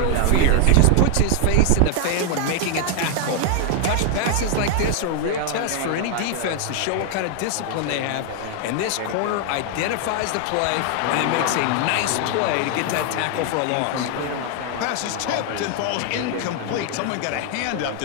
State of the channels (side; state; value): both; different; correlation 0.00